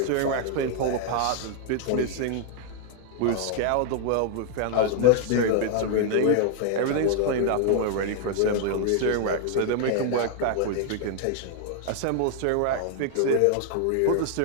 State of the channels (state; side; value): different; both; correlation 0.00